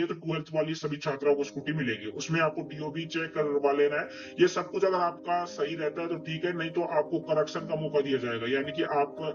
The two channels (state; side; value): identical; both; correlation 1.00